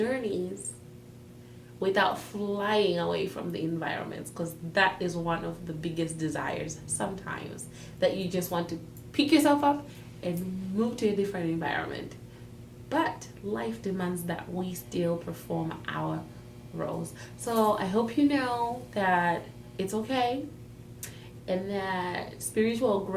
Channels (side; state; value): both; identical; correlation 1.00